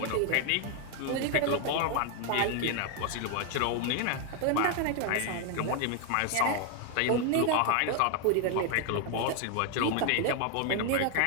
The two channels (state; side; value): different; both; correlation 0.01